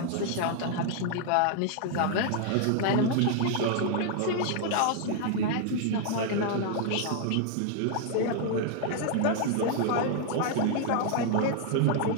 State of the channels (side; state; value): both; different; correlation 0.00